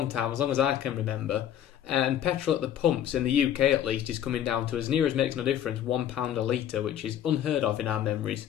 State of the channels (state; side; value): quieter; right; 10.5 dB